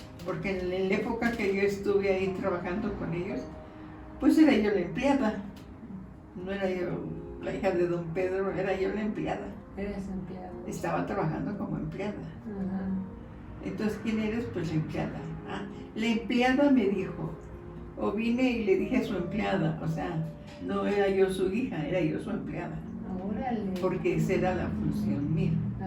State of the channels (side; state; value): both; identical; correlation 1.00